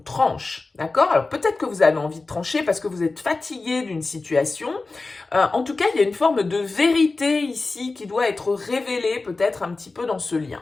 D'accord? Alors, peut-être que vous avez envie de trancher parce que vous êtes fatigué d'une situation. En tout cas, il y a une forme de vérité ici qui doit être révélée, peut-être un petit peu dans ce lien.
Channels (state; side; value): quieter; right; 3.6 dB